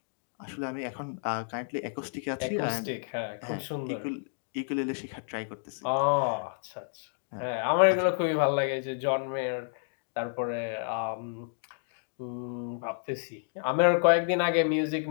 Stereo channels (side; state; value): right; silent; digital silence